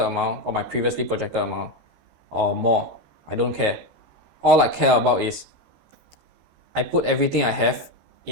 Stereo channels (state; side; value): late; left; 13 ms